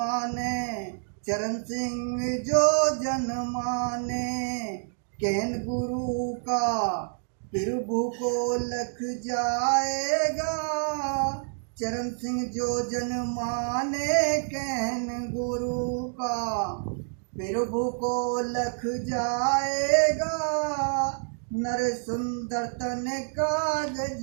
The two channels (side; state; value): left; silent; digital silence